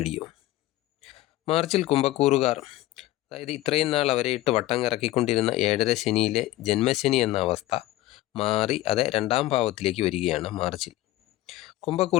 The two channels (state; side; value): quieter; right; 16.3 dB